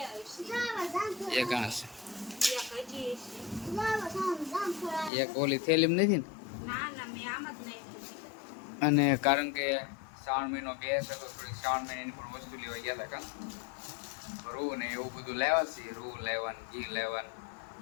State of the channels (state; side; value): drops out; right; at 5.1 s